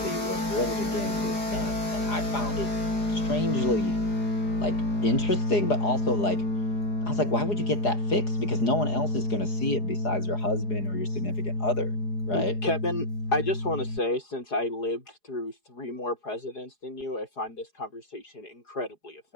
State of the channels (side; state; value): right; late; 4.8 ms